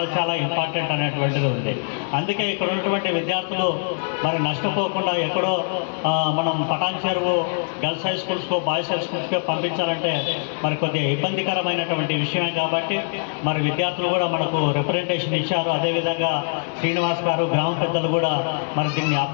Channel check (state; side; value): silent; right; digital silence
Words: చాలా ఇంపార్టెంట్ అనేటువంటిది ఉంది. అందుకే ఇక్కడ ఉన్నటువంటి విద్యార్థులు మరి నష్టపోకుండా ఎక్కడో మనం పటాన్ చెరువు గర్ల్స్ హై స్కూల్స్కో బాయ్స్ హై స్కూల్స్కో పంపించాలంటే మరి కొద్దిగా ఇబ్బందికరమైనటువంటి విషయమే. కాబట్టి మరి విద్యార్థులు కూడా మనకు రిప్రజెంటేషన్ ఇచ్చారు. అదేవిధంగా శ్రీనివాస్ గారు గ్రామ పెద్దలు కూడా మరి దీన్ని